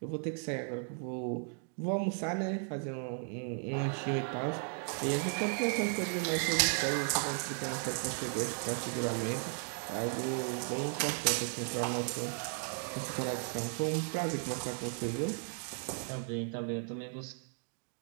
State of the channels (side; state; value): left; silent; 54 dB below the other